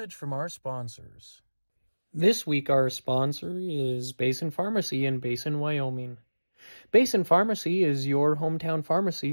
from our sponsors. This week our sponsor is Basin Pharmacy in Basin, Wyoming. Basin Pharmacy is your hometown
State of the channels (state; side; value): inverted; both; correlation -1.00